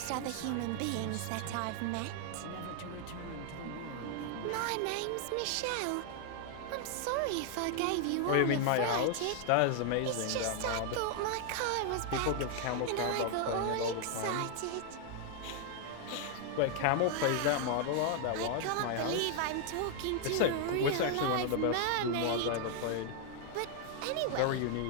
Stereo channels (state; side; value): different; both; correlation 0.00